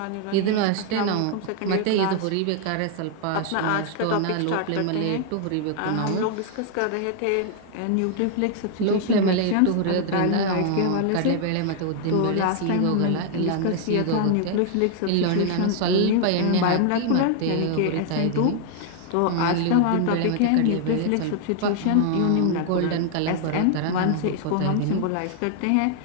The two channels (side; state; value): both; different; correlation 0.00